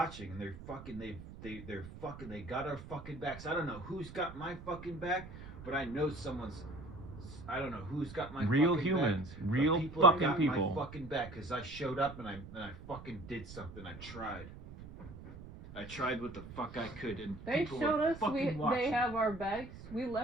and they're fucking, they got our fucking backs. I don't know who's got my fucking back, but I know I don't know who's got my real fucking humans, back, real people fucking got people. my fucking back, because I showed up and I fucking did something. I tried what the fuck I could, and they people showed were us fucking watching. They have our bags. We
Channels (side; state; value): right; noise; rumble, 14 dB below the sound